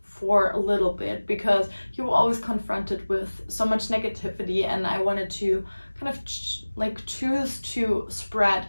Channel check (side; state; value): both; inverted; correlation -1.00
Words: for a little bit, because you're always confronted with so much negativity, and I wanted to kind of choose to spread